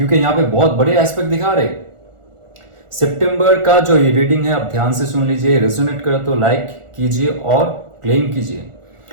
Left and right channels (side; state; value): left; late; 1.4 ms